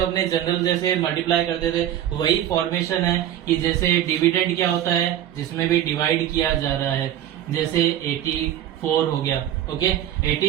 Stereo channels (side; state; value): left; quieter; 11.5 dB